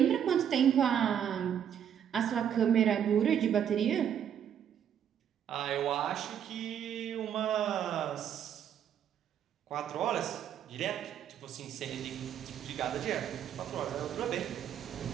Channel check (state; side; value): quieter; left; 9.1 dB